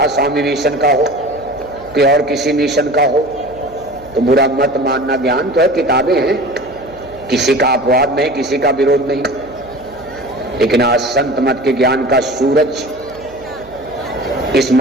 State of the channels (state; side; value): noise; right; hum, 22 dB below the sound